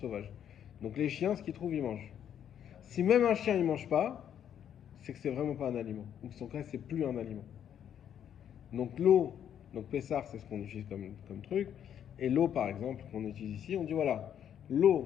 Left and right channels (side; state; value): right; quieter; 9.4 dB